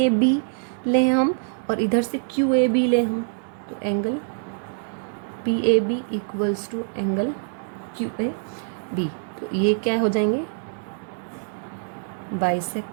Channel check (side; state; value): left; silent; digital silence